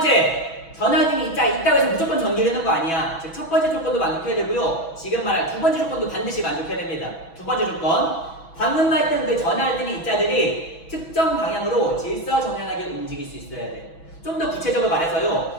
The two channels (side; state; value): right; late; 6.1 ms